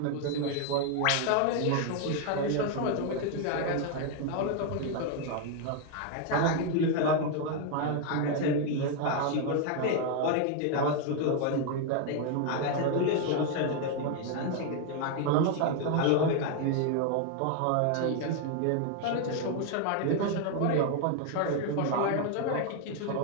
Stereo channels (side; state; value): both; different; correlation 0.01